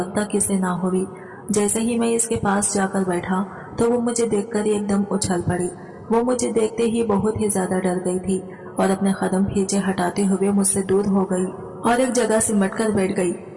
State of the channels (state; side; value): identical; both; correlation 1.00